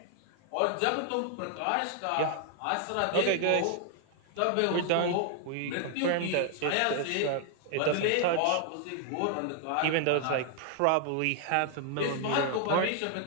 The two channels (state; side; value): different; both; correlation 0.00